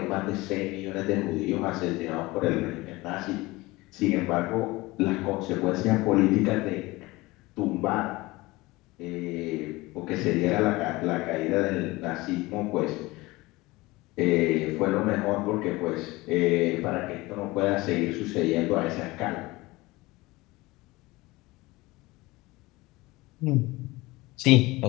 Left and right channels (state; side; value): quieter; right; 21.1 dB